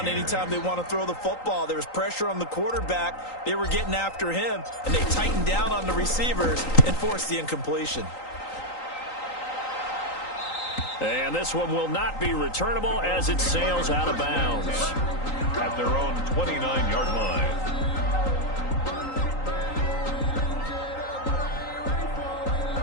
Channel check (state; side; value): late; right; 3.9 ms